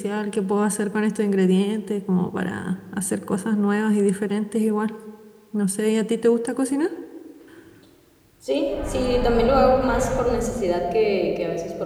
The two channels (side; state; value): both; identical; correlation 1.00